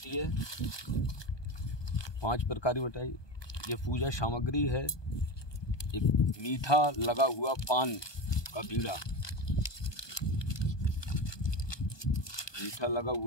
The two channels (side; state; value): right; late; 1.2 ms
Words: है, 5 प्रकार की मिठाई, ये पूजा सामग्री है। एक मीठा लगा हुआ पान का बीड़ा, मीठा लगा